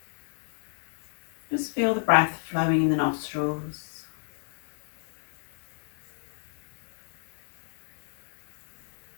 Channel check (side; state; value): right; silent; 57 dB below the other